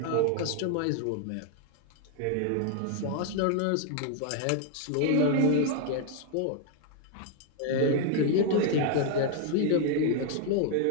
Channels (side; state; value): both; different; correlation 0.00